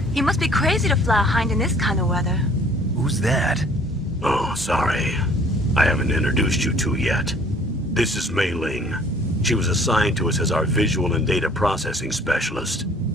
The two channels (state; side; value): normal; both; correlation 0.55